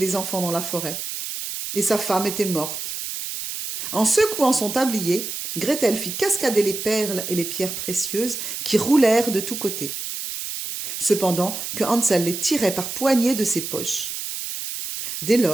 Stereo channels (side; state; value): right; noise; hiss, 6 dB below the sound